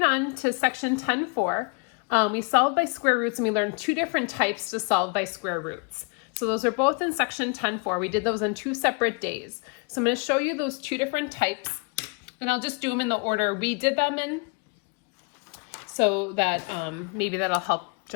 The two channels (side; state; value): right; quieter; 34.0 dB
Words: on to section 10.4. We solved by square roots, and we learned two different types to solve by square roots. So those are both in section 10.4. We did those on 2 separate days. So I'm going to show you those two different types, and I'll just do them in the order we did them in, so that maybe that'll help